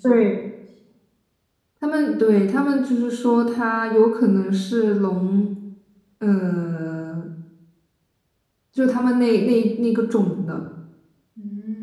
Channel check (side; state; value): both; identical; correlation 1.00